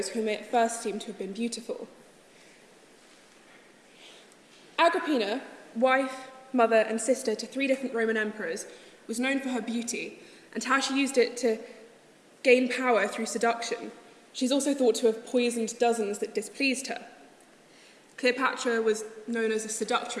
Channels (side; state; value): both; identical; correlation 1.00